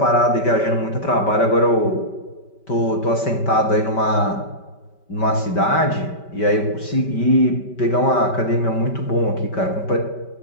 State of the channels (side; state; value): right; late; 5.2 ms